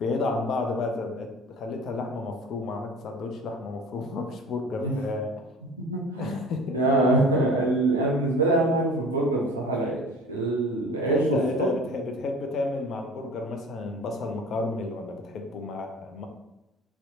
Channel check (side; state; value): both; normal; correlation 0.42